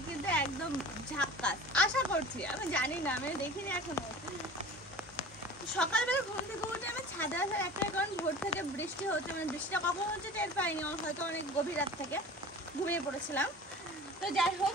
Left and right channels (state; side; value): normal; both; correlation 0.40